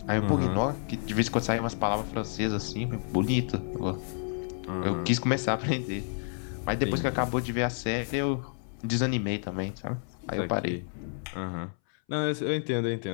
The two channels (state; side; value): silent; right; 58 dB below the other